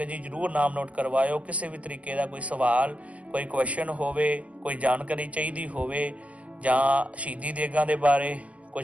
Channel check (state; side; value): late; left; 0.065 ms